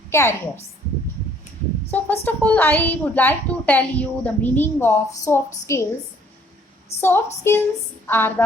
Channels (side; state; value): both; normal; correlation 0.61